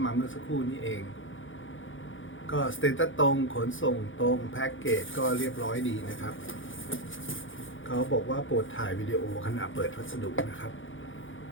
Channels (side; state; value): right; late; 0.57 ms